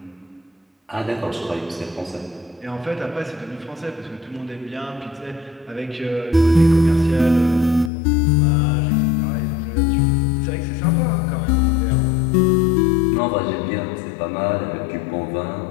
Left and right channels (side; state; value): right; drops out; at 7.9 s